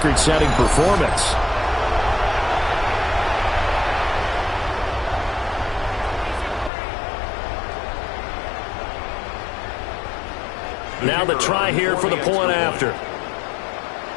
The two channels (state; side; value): drops out; right; at 6.7 s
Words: performance. Now the try here for the point after.